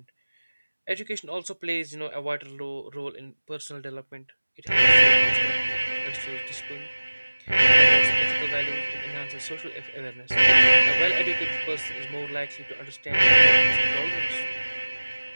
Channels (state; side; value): inverted; both; correlation -1.00